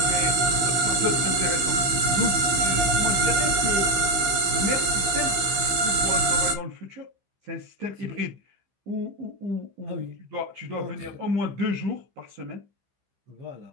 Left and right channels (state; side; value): late; left; 15 ms